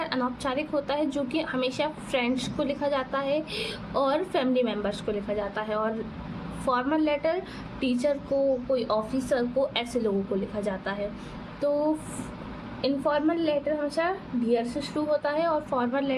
अनौपचारिक होता है, जो कि हमेशा फ्रेंड्स को लिखा जाता है और फैमिली मेम्बर्स को लिखा जाता है। और फॉर्मल लेटर टीचर को, कोई ऑफिसर को, ऐसे लोगों को लिखा जाता है। तो इनफॉर्मल लेटर हमेशा डियर से शुरू होता है और फॉर्मल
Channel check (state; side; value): identical; both; correlation 1.00